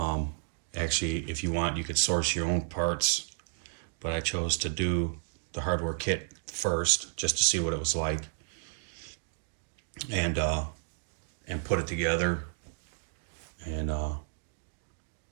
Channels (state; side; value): silent; left; digital silence